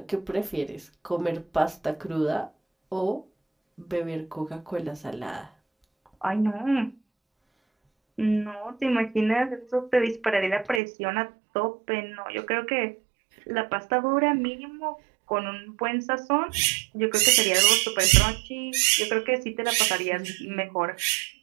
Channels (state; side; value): drops out; left; at 10.8 s